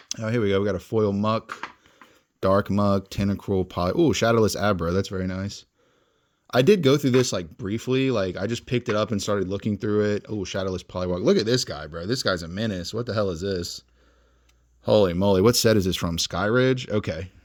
Oh, here we go. We got a foil Muck, Dark Muck, Tentacruel, oh, Shadowless Abra. That's very nice. I did go through this like briefly. Like I just picked it up and started looking through it. Oh, Shadowless Poliwag. Look at this guy, bro. This guy's a menace. What the hell is this? Holy moly. What set is this from? Skyridge? Okay.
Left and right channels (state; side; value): identical; both; correlation 1.00